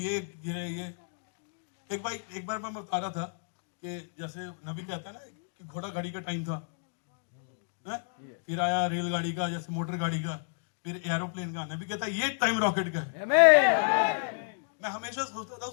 एक बार मैं बता रहा था कि जैसे नबी कहता है ना कि घोड़ा गाड़ी का टाइम था, फिर आया रेलगाड़ी का, जैसे मोटर गाड़ी का, फिर एरोप्लेन का। नबी कहता है ये टाइम रॉकेट का है। मैं हमेशा सोचता था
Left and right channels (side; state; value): right; silent; digital silence